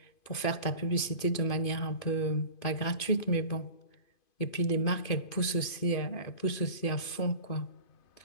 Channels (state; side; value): late; right; 2.5 ms